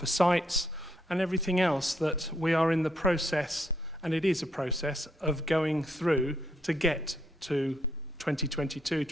sites, and everything else that we are in the process, and it is a process, of going through to get to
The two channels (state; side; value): normal; both; correlation 0.74